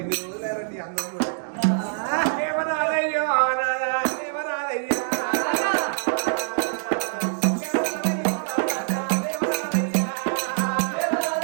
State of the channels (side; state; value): left; silent; digital silence